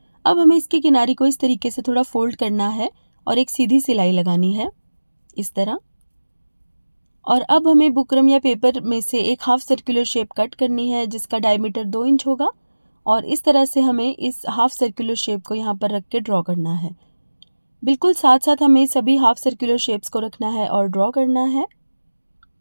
अब हमें इसकी किनारी को इस तरीके से थोड़ा फोल्ड करना है और एक सीधी सिलाई लगानी है इस तरह। और अब हमें बुकरम या पेपर में से एक हाफ सर्कुलर शेप कट करनी है जिसका डायमीटर 2 इंच होगा और इस तरह से हमें इस हाफ सर्कुलर शेप को यहाँ पर रख के ड्रॉ करना है। बिल्कुल साथ साथ हमें सभी हाफ सर्कुलर शेप्स को रखना है और ड्रॉ करना है।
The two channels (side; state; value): both; inverted; correlation -1.00